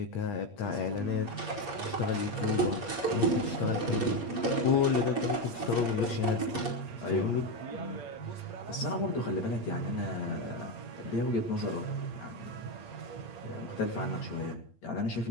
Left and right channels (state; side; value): late; right; 8.6 ms